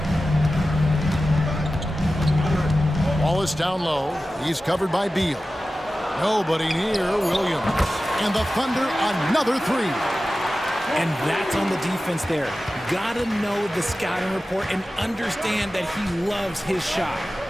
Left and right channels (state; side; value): normal; both; correlation 0.95